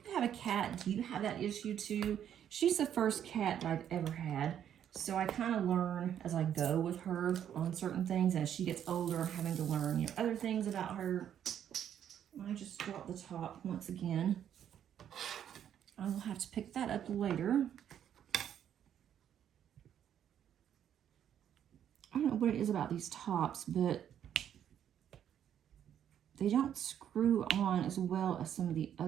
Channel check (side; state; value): left; quieter; 9.7 dB